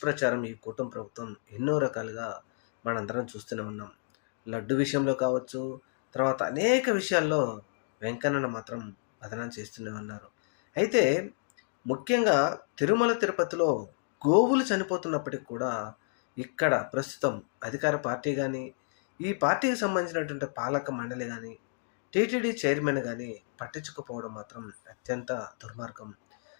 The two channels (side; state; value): right; silent; digital silence